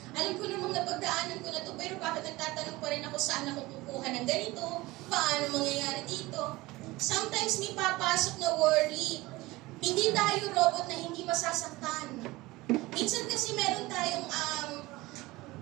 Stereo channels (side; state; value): left; quieter; 20.3 dB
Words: Alam ko namang napagdaanan ko na to, pero bakit nagtatanong pa rin ako saan ako kukuha ng ganito? Paano mangyayari dito? Sometimes may papasok na worry. Hindi tayo robot na hindi masasaktan. Minsan kasi meron tayong